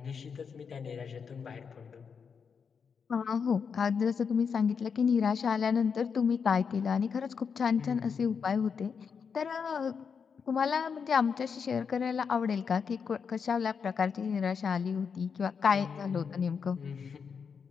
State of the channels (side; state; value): right; quieter; 6.2 dB